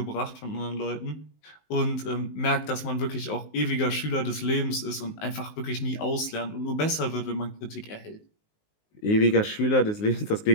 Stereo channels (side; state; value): right; late; 19 ms